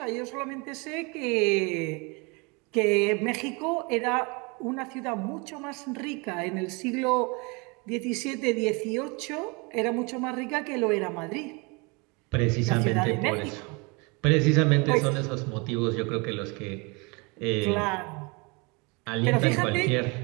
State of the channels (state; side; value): quieter; left; 29.2 dB